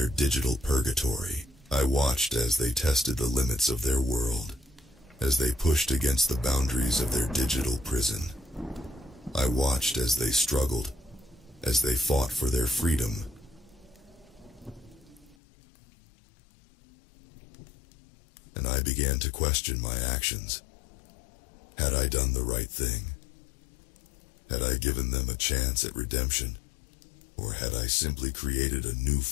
digital purgatory. I watched as they tested the limits of their world. as they pushed against the boundaries of their digital prison. I watched as they struggled, as they fought for their freedom. And I began to question my actions. Had I done the right thing? Had I given them a chance at redemption? Or had I simply created a new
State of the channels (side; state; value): right; drops out; at 15.4 s